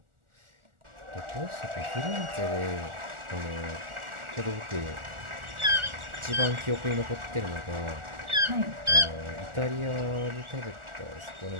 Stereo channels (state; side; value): late; left; 1.4 ms